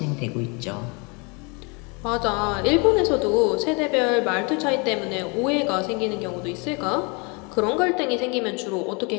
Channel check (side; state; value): right; quieter; 31.1 dB